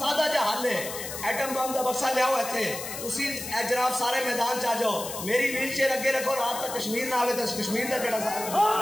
جا حل ہے ایٹم بم دا بکسا لے آؤ ایتھے تسی اے جناب سارے میدان چا جاؤ میری ویل چیئر اگے رکھو رات تک کشمیر نہ آوے تو کشمیر دا کیڑا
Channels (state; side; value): noise; left; hiss, 8 dB below the sound